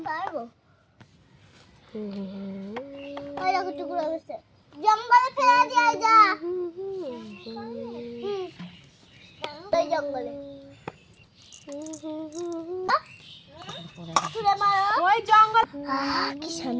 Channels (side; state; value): both; identical; correlation 1.00